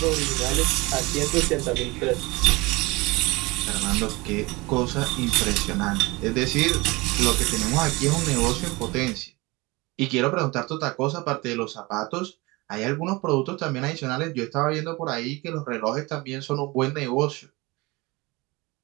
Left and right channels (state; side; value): quieter; left; 23.5 dB